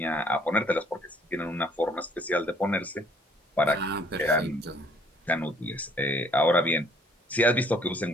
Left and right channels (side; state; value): both; normal; correlation 0.61